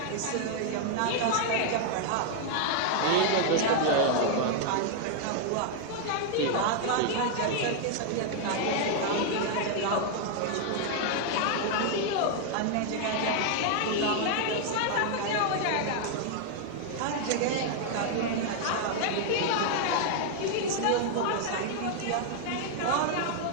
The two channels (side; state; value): both; different; correlation 0.00